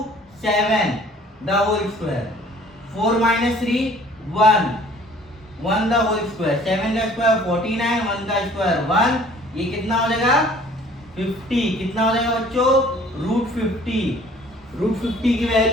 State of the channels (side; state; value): both; normal; correlation 0.53